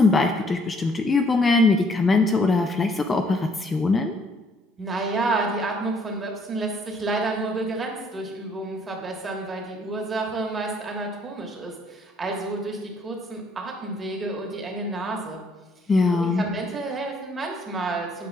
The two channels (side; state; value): both; normal; correlation 0.65